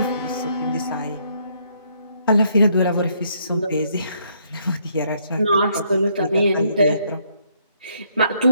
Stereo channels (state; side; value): inverted; both; correlation -0.71